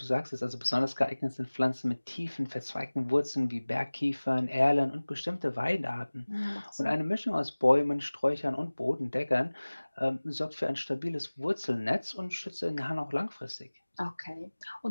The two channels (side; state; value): both; inverted; correlation -1.00